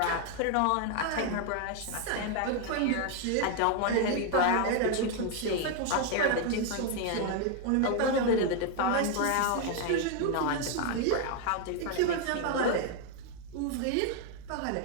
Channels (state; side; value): different; both; correlation 0.01